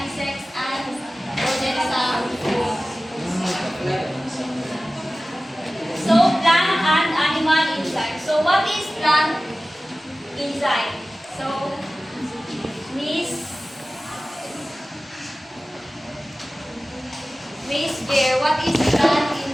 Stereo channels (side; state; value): both; normal; correlation 0.97